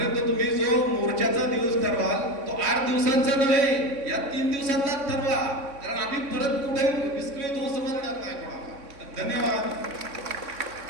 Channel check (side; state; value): left; late; 3.6 ms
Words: तुम्ही जो मोर्चाचा दिवस ठरवाल तो 8 दिवसांचा नव्हे, या 3 दिवसांनाच ठरवा, कारण आम्ही परत कुठे विस्कळीत होऊ समजणार नाही कोणाला. धन्यवाद.